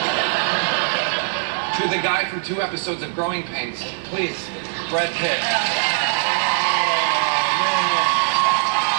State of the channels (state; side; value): silent; left; digital silence